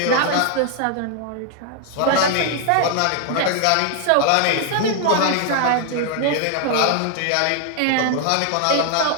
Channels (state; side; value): different; both; correlation 0.00